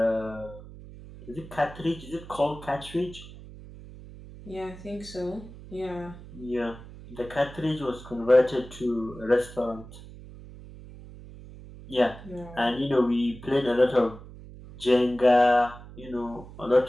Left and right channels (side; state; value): right; noise; hum, 16 dB below the sound